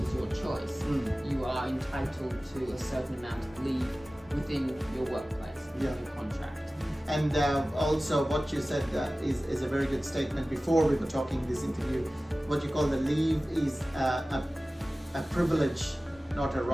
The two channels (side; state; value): both; normal; correlation 0.97